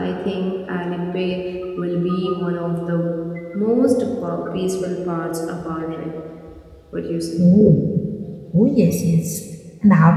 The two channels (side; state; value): both; identical; correlation 1.00